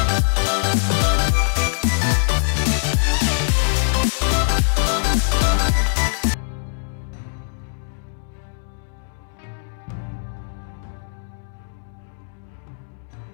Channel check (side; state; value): right; silent; digital silence